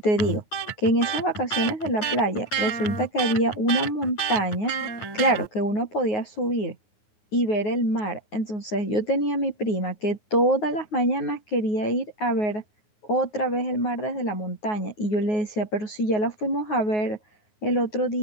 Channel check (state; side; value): late; right; 9.6 ms